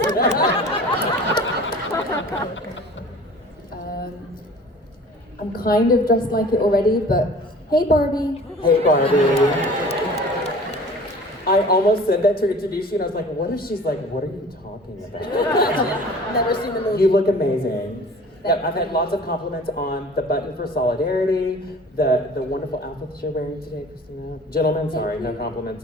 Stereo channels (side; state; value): both; normal; correlation 0.45